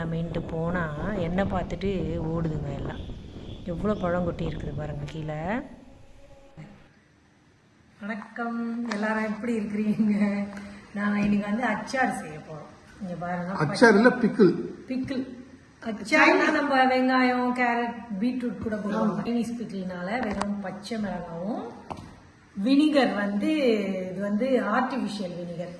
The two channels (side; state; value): both; identical; correlation 1.00